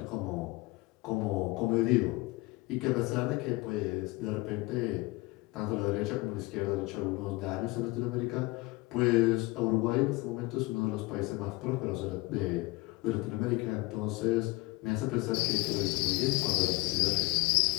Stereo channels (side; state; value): right; quieter; 22.9 dB